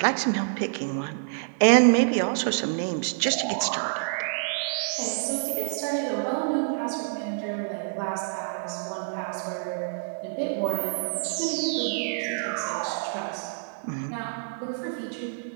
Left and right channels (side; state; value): left; silent; digital silence